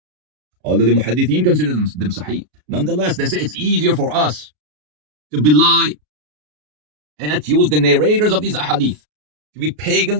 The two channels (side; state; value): left; late; 33 ms